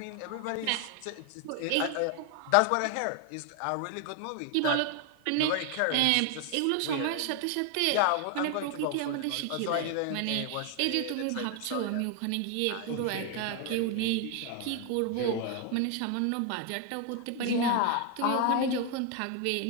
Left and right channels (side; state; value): both; different; correlation 0.01